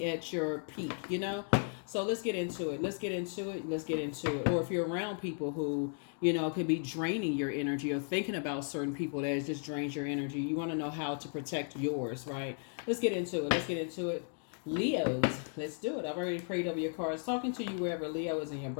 at your peak. So let's get into it. Or if you're around people who, could be draining your energy, or thinking about certain people that just drains your energy, you want to know how to protect yours, right? Let's get into it. Leos, let's do it. I've already prayed over your cards. Talking to you wherever Leo is in your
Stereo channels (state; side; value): silent; right; 54 dB below the other